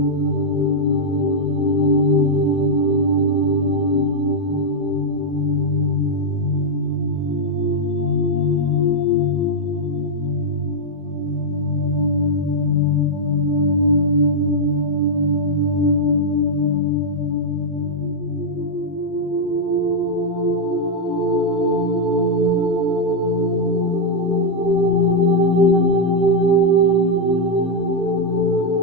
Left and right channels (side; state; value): both; normal; correlation -0.02